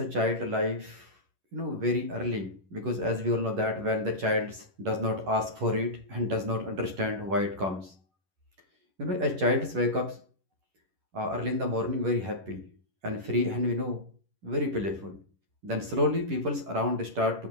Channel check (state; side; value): late; left; 11 ms